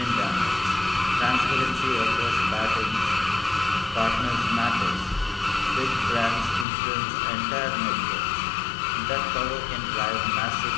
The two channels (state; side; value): drops out; right; at 6.7 s